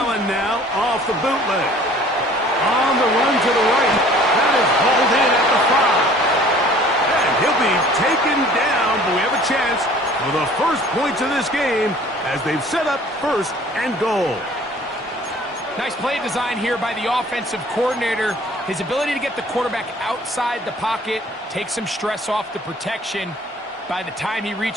now off the bootleg. On the run to the right. That is hauled in at the 5. And he'll be taken down, but we have a chance for the first points of this game as they've set up 1st and goal. Nice play design here by the offensive coordinator. His ability to get the quarterback outside the pocket, take some stress off the protection. By the time he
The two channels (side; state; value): both; normal; correlation 0.51